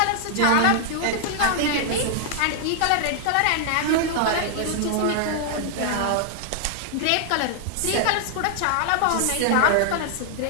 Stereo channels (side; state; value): both; different; correlation 0.00